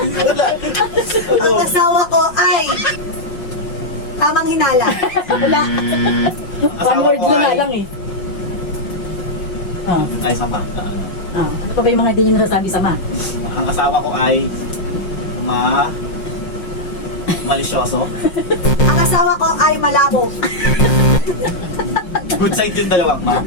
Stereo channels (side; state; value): right; late; 5.5 ms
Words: Ang asawa ko ay tamang hinala. Wala. Ang One asawa word ko na ay lang eh. Oh. ay sama. Oh. Ito pa yung mga hindi nyo nasasabi sa ma. Ang asawa ko ay malisyoso. Ang asawa ko ay malabo. Good side yung dalawang ma.